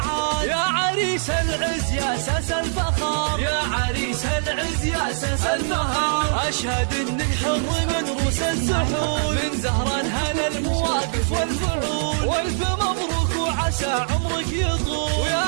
يا عريس العز يا اساس الفخر، يا عريس العز يا اساس الفخر. اشهد انك حر من روس السحول، من زهران هلا المواقف والفعول. والف مبروك وعسى عمرك يطول، ويا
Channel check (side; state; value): left; silent; digital silence